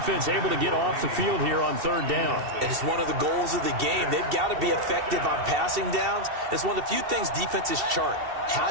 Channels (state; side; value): late; left; 2.7 ms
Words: able to get off the field here on 3rd down. And it's one of the goals of the game. They've got to be effective on passing downs. It's one of the few things defenses chart.